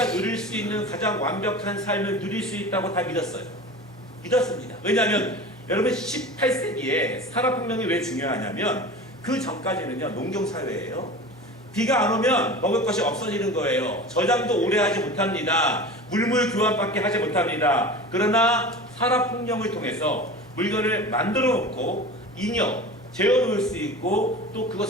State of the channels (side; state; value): both; normal; correlation 0.34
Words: 누릴 수 있는 가장 완벽한 삶을 누릴 수 있다고 다 믿었어요. 믿었습니다. 왜냐하면 여러분 18세기에 산업혁명이 왜 중요하냐면 그 전까지는요, 농경사회예요. 비가 안 오면 먹을 것이 없어지는 거예요. 저장도 오래 하지 못합니다. 물물 교환밖에 하지 못합니다. 그러나 산업혁명을 통해서 물건을 만들어 놓고 잉여, 재워놓을 수 있고 또